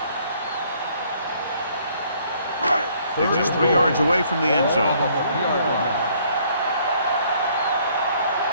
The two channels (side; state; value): both; inverted; correlation -0.63